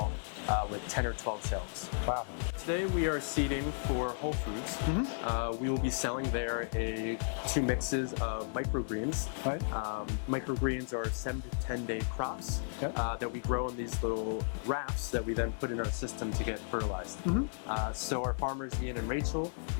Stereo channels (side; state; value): right; silent; digital silence